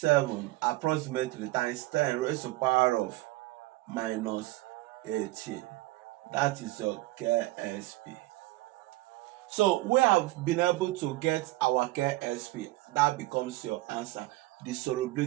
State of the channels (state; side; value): quieter; left; 19.3 dB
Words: approximately times 10 raised to the power of minus 18. That is your KSP. So we have been able to get our KSP. That becomes your answer. The